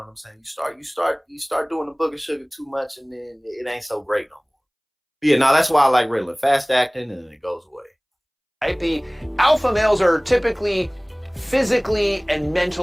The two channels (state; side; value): identical; both; correlation 1.00